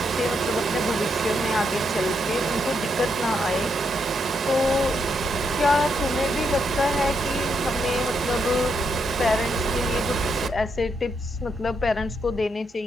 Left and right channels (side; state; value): both; normal; correlation 0.80